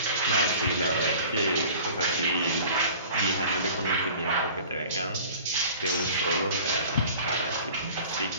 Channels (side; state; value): both; inverted; correlation -0.44